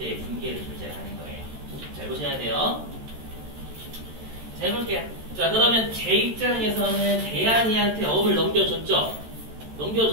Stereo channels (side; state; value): left; late; 13 ms